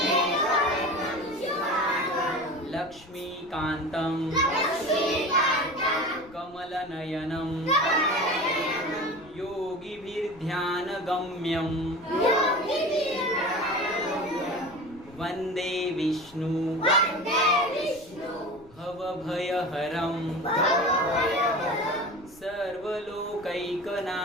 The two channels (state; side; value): noise; left; rumble, 24 dB below the sound